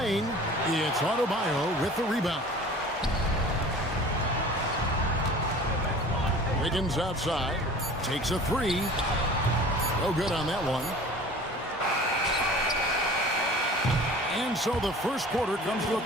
It's Adebayo with the rebound. Wiggins outside. Takes a three. No good on that one. And so the first quarter comes to a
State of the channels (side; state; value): both; normal; correlation 0.43